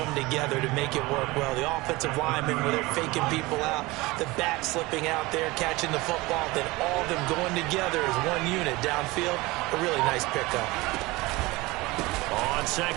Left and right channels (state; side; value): quieter; left; 21.7 dB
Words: together to make it work well. The offensive linemen, where they're faking people out, the back slipping out there, catching the football, then all of them going together as one unit downfield. A really nice pickup. On